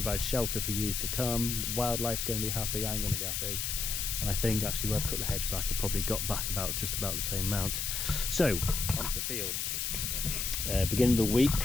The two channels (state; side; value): noise; left; hiss, 1 dB below the sound